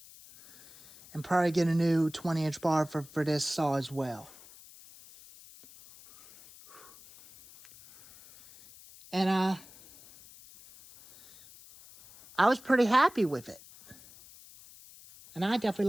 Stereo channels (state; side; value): noise; left; hiss, 22 dB below the sound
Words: And probably get a new 20-inch bar for this saw as well. And I was pretty happy with it. And I